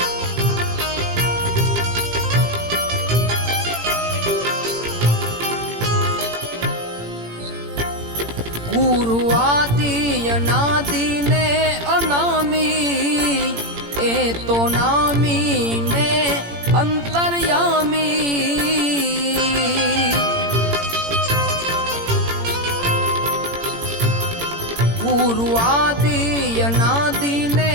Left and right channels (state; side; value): late; left; 17 ms